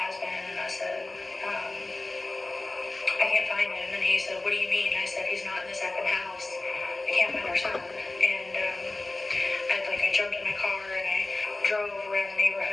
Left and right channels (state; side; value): quieter; right; 3.0 dB